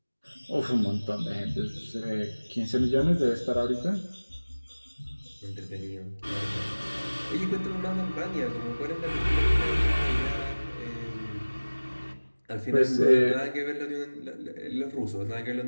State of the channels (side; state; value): both; inverted; correlation -1.00